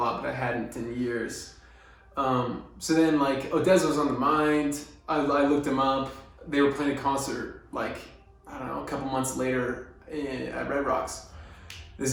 but I hadn't in years. So then Odessa was on the mind. I looked them up. They were playing a concert I don't know, a couple months later at Red Rocks. This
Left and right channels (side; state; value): both; identical; correlation 1.00